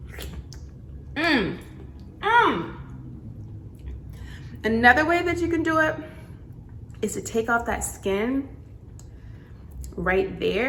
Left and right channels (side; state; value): both; identical; correlation 1.00